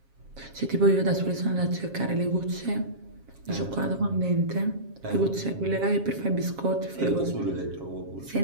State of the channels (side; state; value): left; late; 7.4 ms